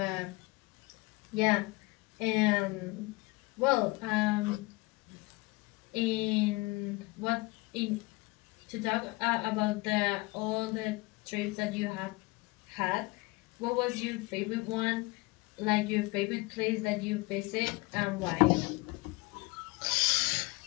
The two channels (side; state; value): right; quieter; 24.0 dB